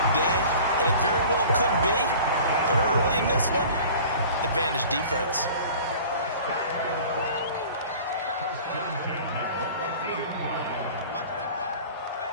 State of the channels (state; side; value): inverted; both; correlation -0.43